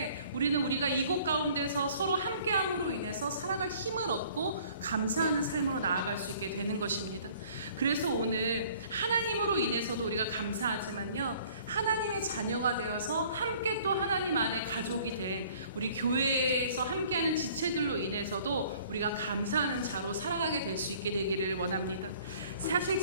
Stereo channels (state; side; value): inverted; both; correlation -0.54